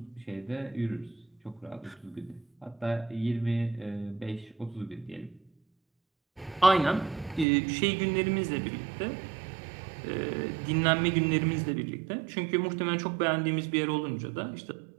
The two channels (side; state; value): left; drops out; at 7.5 s